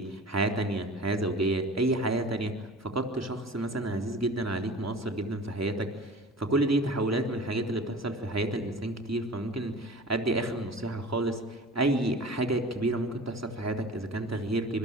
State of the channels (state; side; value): normal; both; correlation 0.40